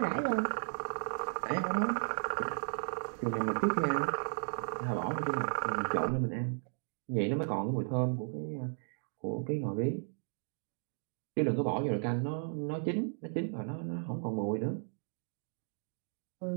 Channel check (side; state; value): left; silent; digital silence